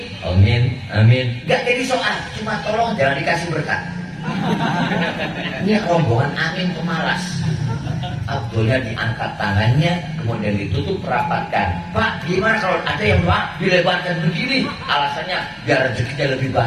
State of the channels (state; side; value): identical; both; correlation 1.00